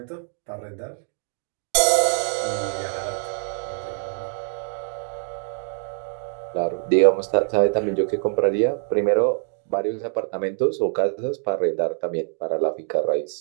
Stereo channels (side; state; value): left; silent; digital silence